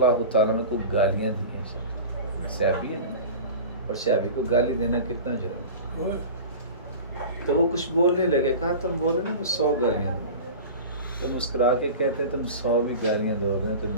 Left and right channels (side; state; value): both; inverted; correlation -0.35